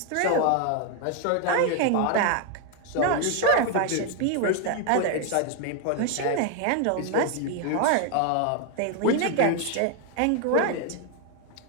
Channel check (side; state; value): both; different; correlation 0.01